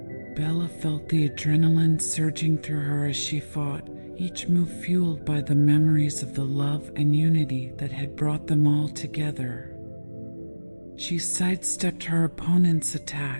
Bella felt the adrenaline surging through her as she fought, each move fueled by the memories of the love and unity that had brought them all together. She sidestepped her opponent's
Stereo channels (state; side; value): inverted; both; correlation -1.00